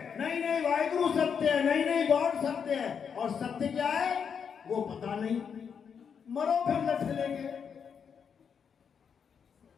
नहीं नहीं वाहिगुरु सत्य है, नहीं नहीं गॉड सत्य है। और सत्य क्या है वो पता नहीं। मरो फिर लठ लेके।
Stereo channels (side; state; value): right; quieter; 6.9 dB